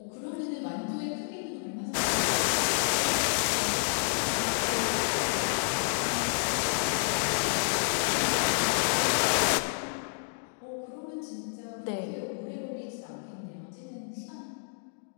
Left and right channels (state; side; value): silent; right; digital silence